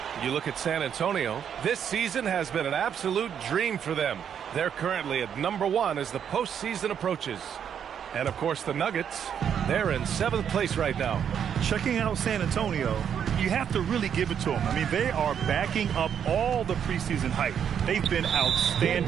You look at San Antonio. This season has been an absolute dream for them. They're currently at number 1 as the postseason approaches. And, of course, the Nuggets, they're in 7th place right now. Checking out San Antonio, you have to really give it to them. I mean, they are backing up all the preseason hype. They've been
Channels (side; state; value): left; quieter; 8.4 dB